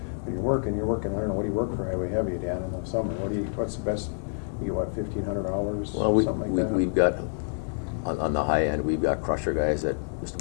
When you're working. I don't know, what do you work for highway heavy, Dan, in the summer? What's the best? You get what, 1,500 hours? Well, something like that. we've got, on the high end, we've got crusher guys that just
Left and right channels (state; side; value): silent; right; 56 dB below the other